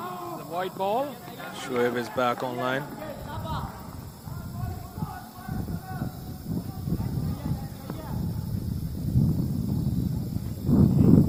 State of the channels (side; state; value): both; identical; correlation 1.00